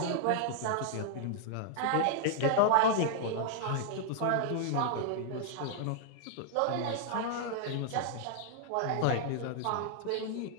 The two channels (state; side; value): different; both; correlation -0.01